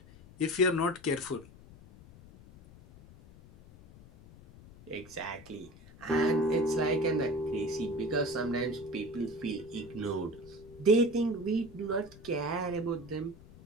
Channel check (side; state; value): left; noise; rumble, 21 dB below the sound